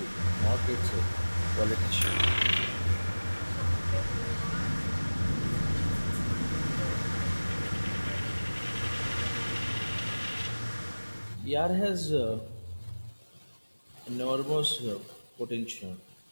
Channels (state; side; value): inverted; both; correlation -1.00